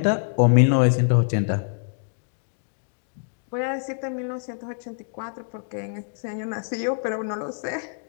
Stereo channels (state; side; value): silent; right; digital silence